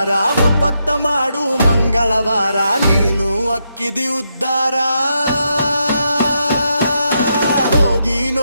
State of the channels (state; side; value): inverted; both; correlation -0.81